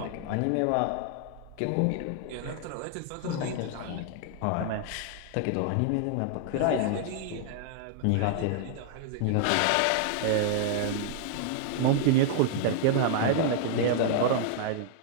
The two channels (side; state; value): both; different; correlation 0.00